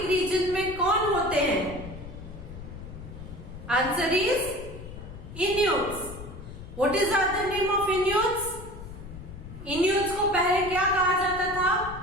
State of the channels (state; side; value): noise; left; rumble, 12 dB below the sound